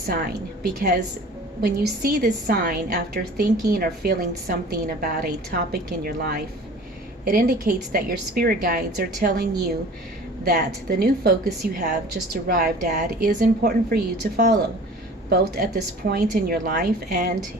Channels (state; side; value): normal; both; correlation 0.44